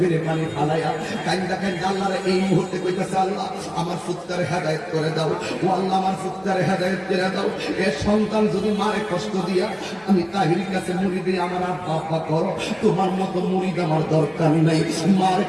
পানি ফালাইয়া কান্দা কান্দা আল্লাহরে এই মুহূর্তে কইতেছে, আল্লাহ আমার পুত্ররে হেদায়েত করে দাও, ও আল্লাহ আমার পুত্ররে হেদায়েত করে দাও। এ সন্তান যদি মারে কষ্ট দিয়া আমি তাহিরির কাছে মুড়ি দিয়ে আমার আব্বা করো, তোমার মতো মুড়িদ আমার দরকার নাই। মারে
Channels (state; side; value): identical; both; correlation 1.00